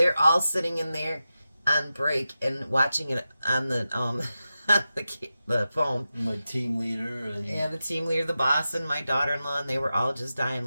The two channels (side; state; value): both; inverted; correlation -0.92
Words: all sitting in there on break and watching it on the the phone. My team leader. Yeah, the team leader, the boss, and my daughter-in-law, and they were all just dying